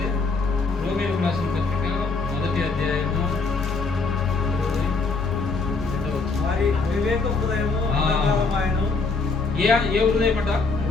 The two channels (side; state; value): right; quieter; 4.1 dB